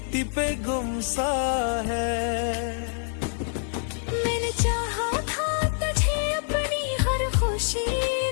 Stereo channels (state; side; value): silent; right; 57 dB below the other